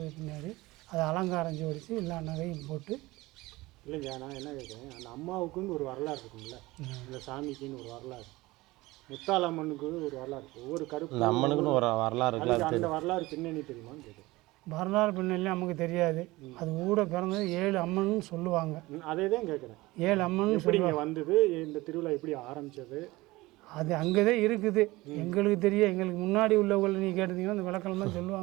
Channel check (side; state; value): left; quieter; 20.2 dB